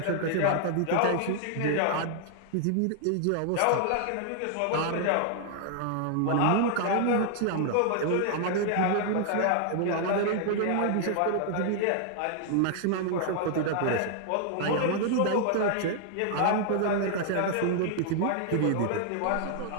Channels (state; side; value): different; both; correlation 0.00